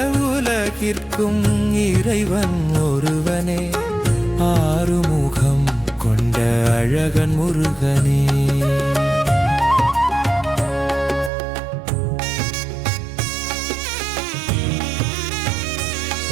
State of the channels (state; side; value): drops out; left; at 11.3 s